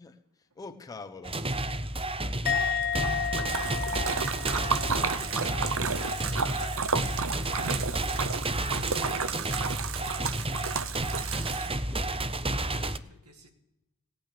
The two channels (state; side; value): normal; both; correlation 0.28